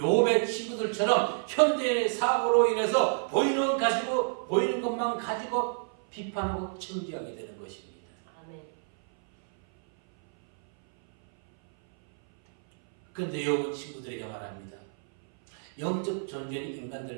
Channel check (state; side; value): silent; left; 57 dB below the other